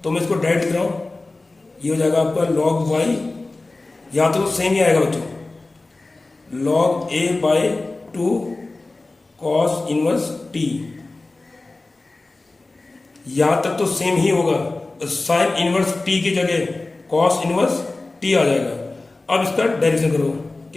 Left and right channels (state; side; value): quieter; right; 3.2 dB